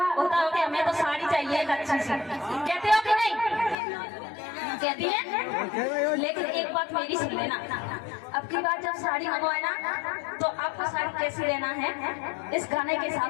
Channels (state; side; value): drops out; right; at 3.8 s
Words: होता हो कि हमें तो साड़ी चाहिए एक अच्छी सी, कहते हो कि नहीं? कहती है। लेकिन एक बात मेरी सुन लेना, अब की बार जब साड़ी मंगवाए ना तो आपको साड़ी कैसी लेना है इस गाने के